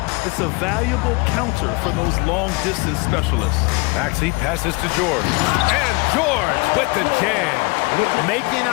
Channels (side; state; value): right; quieter; 27.6 dB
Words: It's a valuable counter for those long-distance specialists. Maxey passes to George. And George with the jam. Making